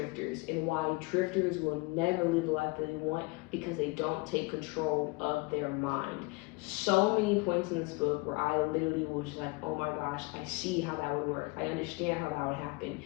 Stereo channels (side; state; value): right; quieter; 26.3 dB